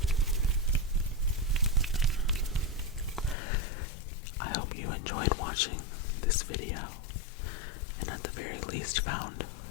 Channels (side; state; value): right; drops out; at 3.4 s